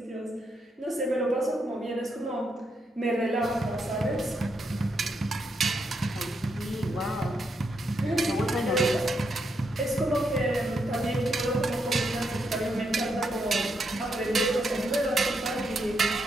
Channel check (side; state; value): both; normal; correlation 0.80